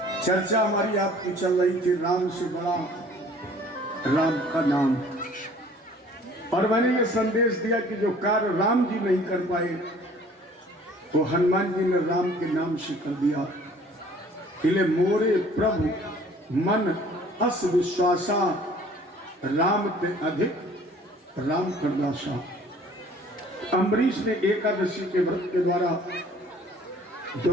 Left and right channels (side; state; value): both; normal; correlation 0.53